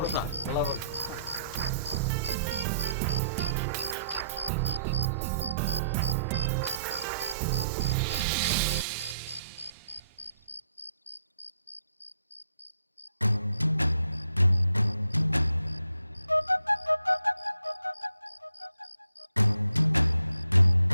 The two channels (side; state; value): both; inverted; correlation -0.72